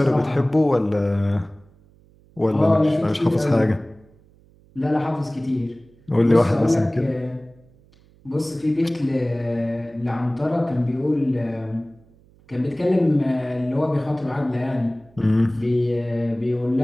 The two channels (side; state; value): right; noise; hum, 29 dB below the sound